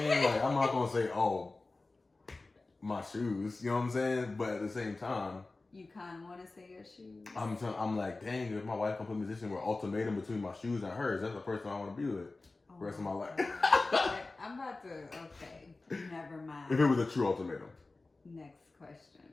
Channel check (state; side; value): quieter; right; 3.4 dB